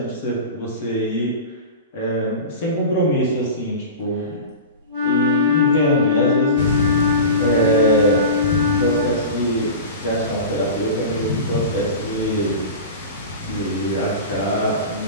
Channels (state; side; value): inverted; both; correlation -0.30